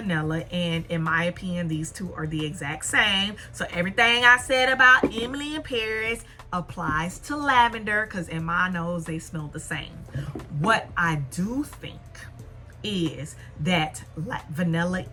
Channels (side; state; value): both; identical; correlation 1.00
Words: And in my opinion, these two are the exact same. So everything I said about Emily in Paris applies to lavender, because in my nose they smell the same. What I do think is that Vanilla